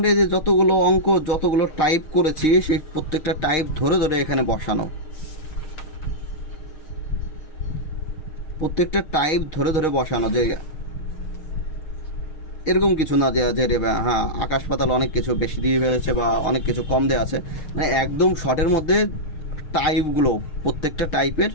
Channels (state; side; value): late; right; 6.5 ms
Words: যে যতগুলো অঙ্ক, যতগুলো টাইপ করেছি, সেই প্রত্যেকটা টাইপ ধরে ধরে এখানে বসানো, প্রত্যেকটা টাইপ ধরে ধরে বসানো, যে এরকম কিছু না যে হ্যাঁ আকাশ পাতাল অনেক কিছু বেশি দিয়ে ফেলেছে বা অনেক কিছু কম দেওয়া আছে, মানে একদম শর্টের মধ্যে টাইপগুলো প্রত্যেকটা টাইপের